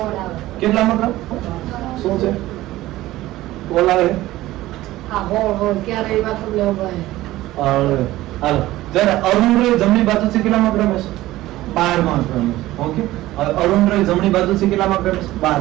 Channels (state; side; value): quieter; left; 16.4 dB